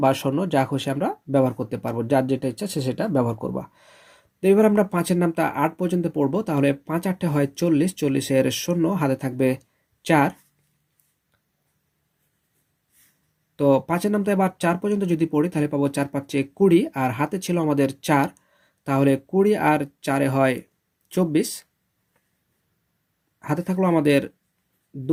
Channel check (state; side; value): identical; both; correlation 1.00